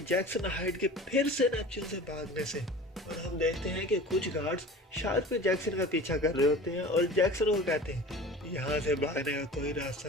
जैक्सन हाइड के फिर से नेपच्यून से भागने से। और हम देखते हैं कि कुछ गार्ड्स शार्क पे जैक्सन का पीछा कर रहे होते हैं और जैक्सन को कहते हैं यहाँ से भागने का कोई रास्ता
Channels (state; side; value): normal; both; correlation 0.39